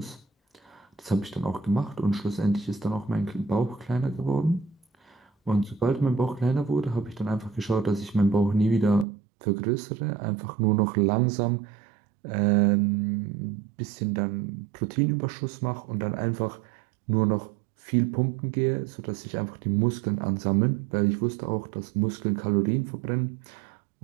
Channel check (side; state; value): left; drops out; at 9.1 s